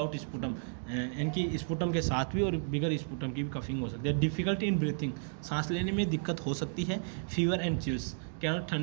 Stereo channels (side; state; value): left; silent; digital silence